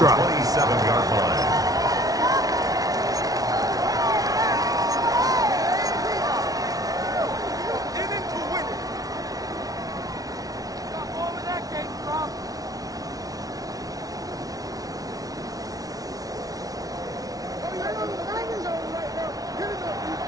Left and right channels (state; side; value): late; left; 0.18 ms